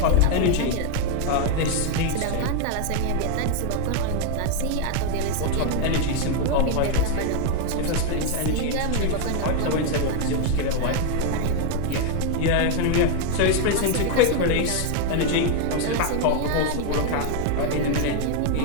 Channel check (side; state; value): both; different; correlation 0.01